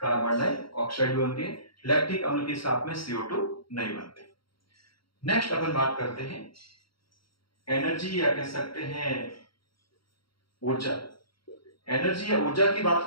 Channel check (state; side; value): late; right; 0.74 ms